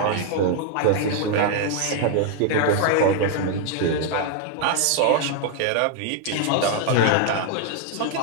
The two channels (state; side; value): different; both; correlation 0.00